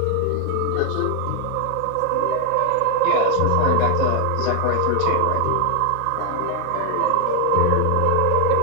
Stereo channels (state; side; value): different; both; correlation 0.00